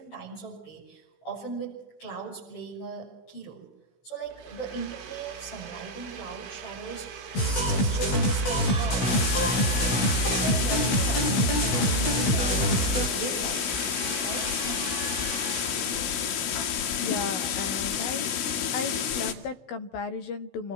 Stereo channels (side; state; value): right; late; 16 ms